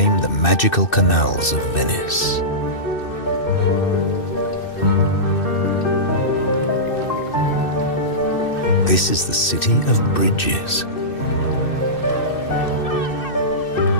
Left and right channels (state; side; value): late; right; 2.6 ms